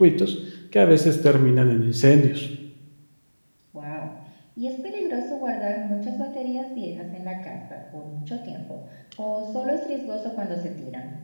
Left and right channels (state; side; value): inverted; both; correlation -1.00